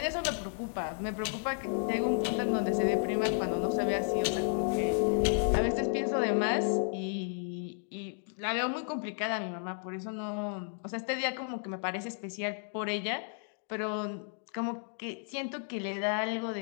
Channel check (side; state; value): right; silent; 56 dB below the other